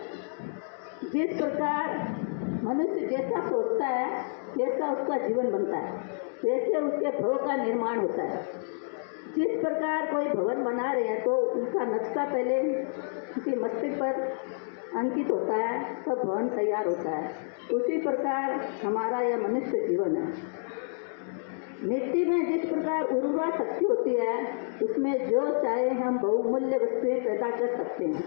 जिस प्रकार मनुष्य जैसा सोचता है वैसा उसका जीवन बनता है, वैसे उसके भव का निर्माण होता है। जिस प्रकार कोई भवन बना रहे हैं तो उनका नक्शा पहले उनके मस्तिष्क पर अंकित होता है, तब भवन तैयार होता है। उसी प्रकार हमारा यह मनुष्य जीवन है। मिट्टी में जिस प्रकार उर्वरा शक्ति होती है, उसमें जो चाहे हम बहुमूल्य वस्तुएं पैदा कर सकते हैं।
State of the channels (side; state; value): right; silent; digital silence